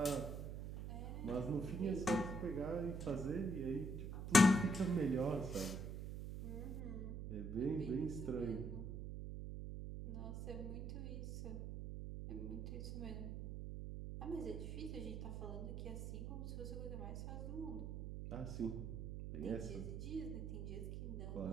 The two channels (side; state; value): right; noise; hum, 5 dB below the sound